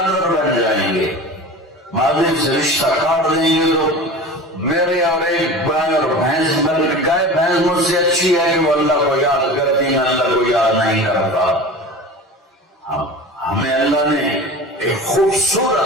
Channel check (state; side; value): normal; both; correlation 0.34